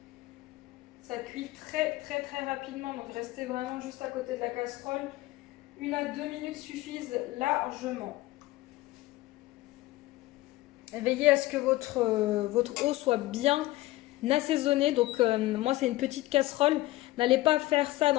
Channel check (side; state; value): right; quieter; 18.1 dB